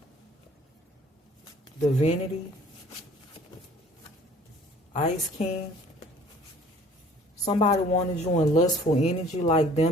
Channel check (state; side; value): normal; both; correlation 0.52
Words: Divinity. Ice King. Somebody wanted you in lustful energy like